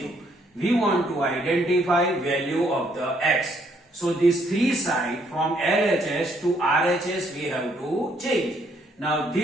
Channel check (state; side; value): normal; both; correlation 0.69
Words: We want to identify value of the x. So this 3 side from LHS to RHS we have to change. Now